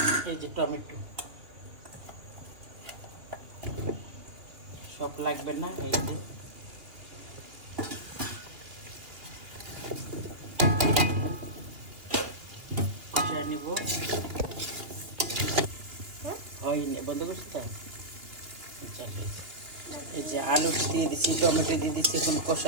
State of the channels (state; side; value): late; left; 2.8 ms